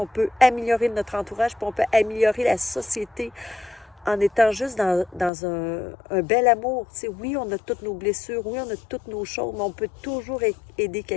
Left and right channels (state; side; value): drops out; right; at 5.3 s